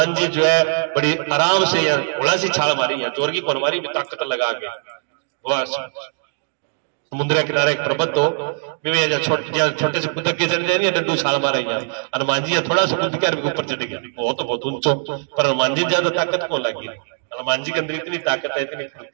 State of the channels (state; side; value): silent; left; digital silence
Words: जी जो है बड़ी आराम से थोड़ा सी छाल मारी है, जोर की कौन मारी, ताकत लगा के। समुद्र के किनारे एक पर्वत हो, छोटे से कुदक के चढ़ जाए, डंडू छाल मारा। हनुमान जी थोड़ा सा कूद के ऊपर चढ़ गया, वो तो बहुत ऊंचो, पर हनुमान जी ज्यादा ताकत को लगी। हनुमान जी के अंदर इतनी ताकत है, इतनी